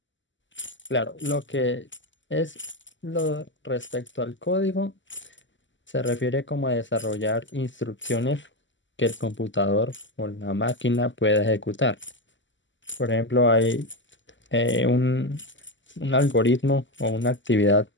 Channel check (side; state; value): right; late; 0.54 ms